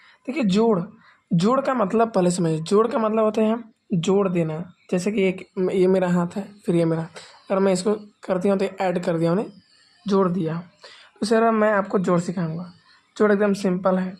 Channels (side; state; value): both; identical; correlation 1.00